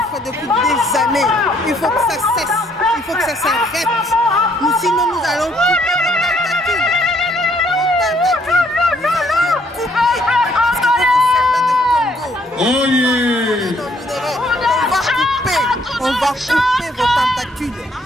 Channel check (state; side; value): normal; both; correlation 0.67